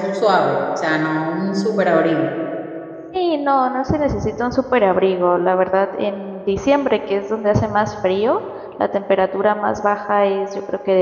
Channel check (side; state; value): both; identical; correlation 1.00